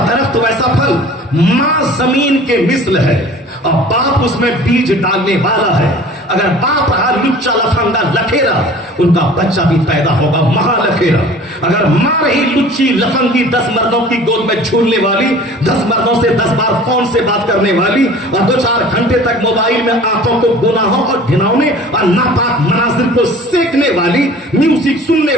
درخت ویسا پھل۔ ماں زمین کے مثل ہے اور باپ اس میں بیج ڈالنے والا ہے۔ اگر باپ رہا لچا لفنگا لکھیرا، ان کا بچہ بھی پیدا ہوگا مہا لکھیرا۔ اگر ماں رہی لچی لفنگی 10 مردوں کی گود میں جھولنے والی، 10 مردوں سے 10 بار فون سے بات کرنے والی، اور 2-4 گھنٹے تک موبائل میں آنکھوں کو گناہوں اور گھناؤنے اور ناپاک مناظر کو سیکھنے والی، میوزک سننے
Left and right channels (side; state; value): both; normal; correlation 0.45